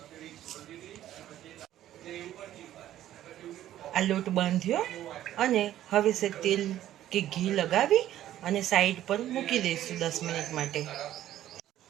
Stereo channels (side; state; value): left; quieter; 12.7 dB